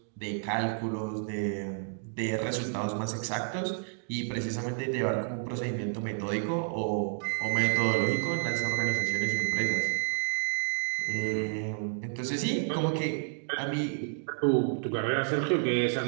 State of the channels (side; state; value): left; silent; 57 dB below the other